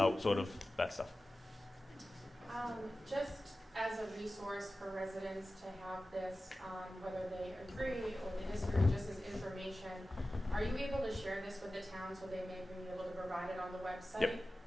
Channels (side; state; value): both; normal; correlation 0.95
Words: sort of that stuff. Just as a resource for residents to have this, whether they agree or they disagree, just as information. Are you able to share this with the town so they may be able to provide it on the website? Yep.